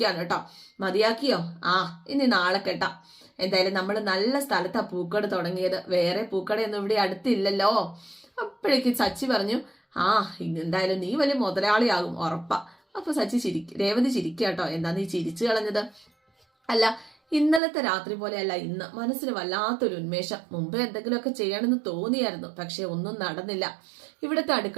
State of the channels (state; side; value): drops out; left; at 17.6 s